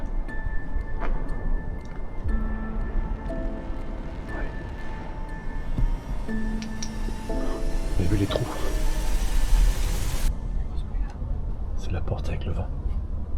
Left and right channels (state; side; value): identical; both; correlation 1.00